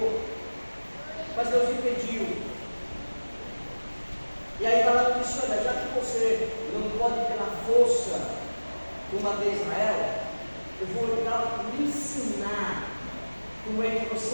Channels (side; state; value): both; inverted; correlation -1.00